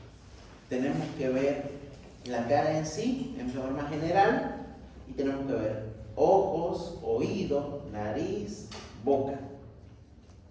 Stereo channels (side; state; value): both; identical; correlation 1.00